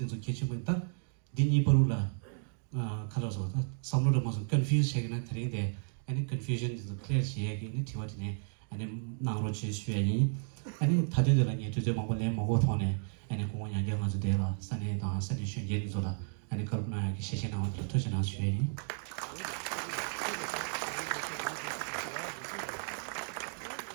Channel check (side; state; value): left; silent; 55 dB below the other